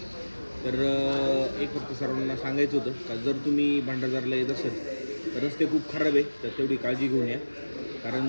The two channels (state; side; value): inverted; both; correlation -1.00